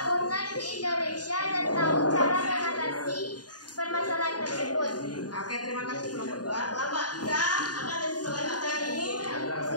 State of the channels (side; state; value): right; late; 0.69 ms